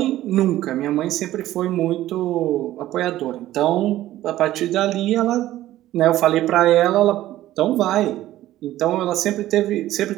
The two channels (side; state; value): left; quieter; 14.4 dB